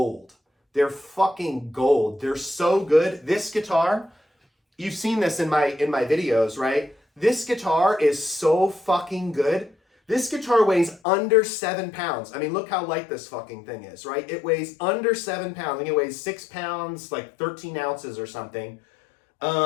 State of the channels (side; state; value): right; drops out; at 11.0 s